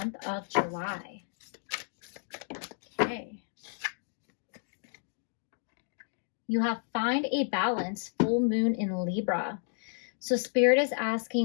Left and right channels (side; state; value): right; silent; 57 dB below the other